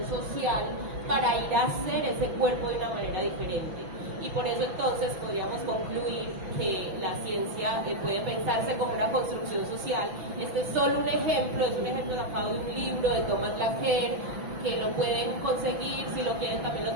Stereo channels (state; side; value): late; left; 6.0 ms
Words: social para ir a hacer ese cuerpo de una manera diferente. Y por eso entonces podríamos concluir que la ciencia puede pensarse como una construcción social. Este es solo un ejemplo, es un ejemplo sacado de un libro de Thomas Laqueur, que lo pueden conseguir, si lo quieren también lo